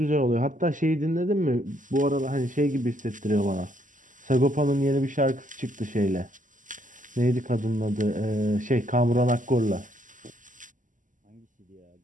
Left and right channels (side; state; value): left; late; 0.38 ms